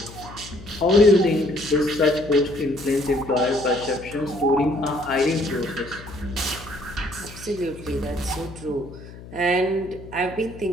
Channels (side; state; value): left; noise; hum, 16 dB below the sound